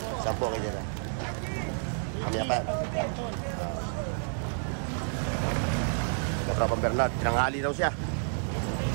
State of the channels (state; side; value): silent; left; 58 dB below the other